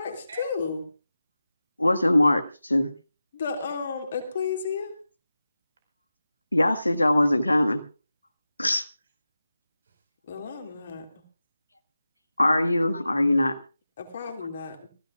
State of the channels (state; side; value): inverted; both; correlation -0.94